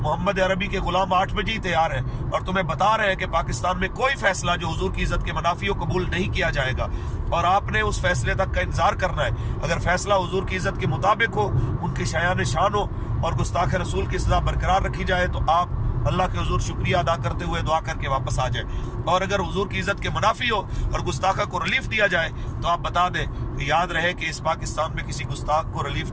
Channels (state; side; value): identical; both; correlation 1.00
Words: عربی کے غلام 8 بجے ہی تیار ہیں اور تمہیں بتا رہے ہیں کہ پاکستان میں کوئی فیصلہ جو حضور کی عزت کے منافی ہو قبول نہیں کیا جائے گا اور آپ نے اس فیصلے تک کا انتظار کرنا ہے۔ اگر فیصلہ حضور کی عزت کے مطابق ہو، ان کی شایان شان ہو اور گستاخ رسول کی سزا برقرار رکھی جائے تو آپ اللہ کے حضور شکریہ ادا کرتے ہوئے دعا کر کے واپس آ جائیں، اور اگر حضور کی عزت کے منافی ہو اور گستاخہ کو ریلیف دیا جائے تو آپ بتا دیں کہ یاد رہے کہ اس پاکستان میں کسی گستاخ کو ریلیف